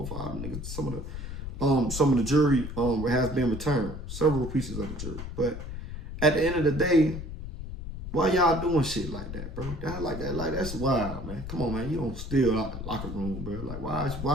or 5 niggas. Some of the jury has been returned. Several pieces of the jury. But at the end of the day, why y'all doing shit like that, bro? That's wild, man. Come on, man. You don't steal out the locker room, bro. Like, why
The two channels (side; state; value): left; noise; rumble, 8 dB below the sound